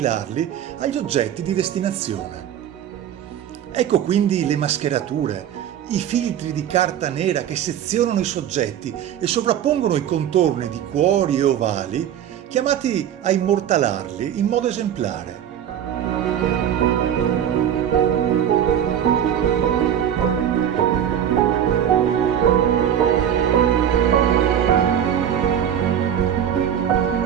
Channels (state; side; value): quieter; left; 9.8 dB